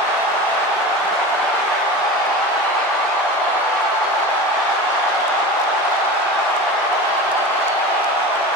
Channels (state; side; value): normal; both; correlation 0.31